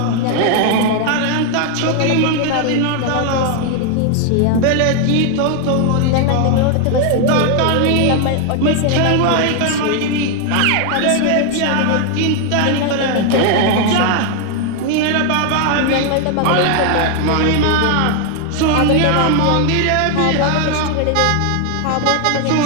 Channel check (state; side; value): different; both; correlation 0.01